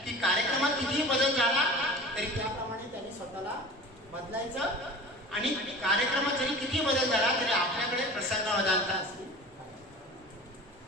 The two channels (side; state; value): both; normal; correlation 0.37